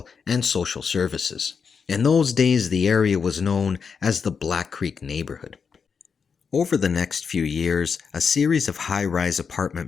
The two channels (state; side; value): quieter; right; 6.0 dB